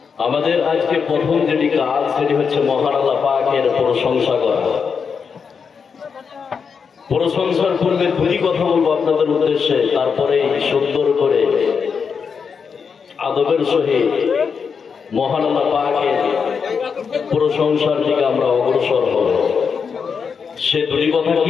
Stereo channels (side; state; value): right; quieter; 6.0 dB